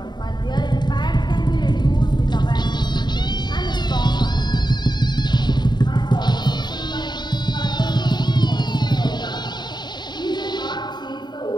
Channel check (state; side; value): late; right; 0.21 ms